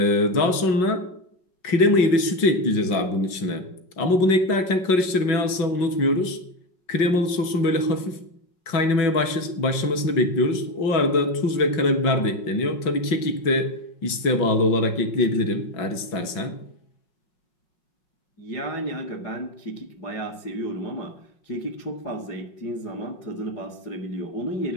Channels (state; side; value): late; right; 5.5 ms